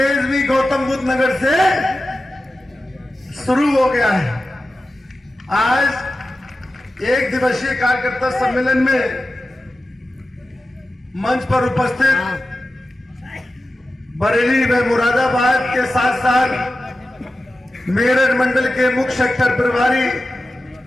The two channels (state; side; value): normal; both; correlation 0.93